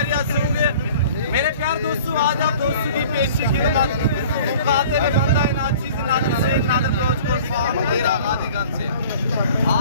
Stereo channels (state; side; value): inverted; both; correlation -0.47